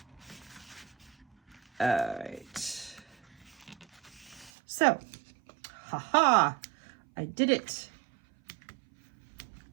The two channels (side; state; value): left; drops out; at 4.5 s